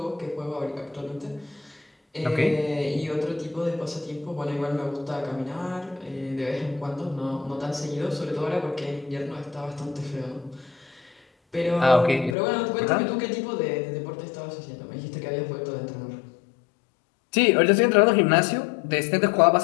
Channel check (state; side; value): drops out; right; at 12.4 s